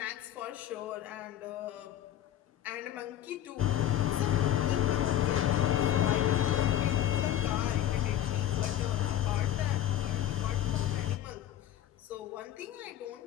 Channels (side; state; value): right; quieter; 11.7 dB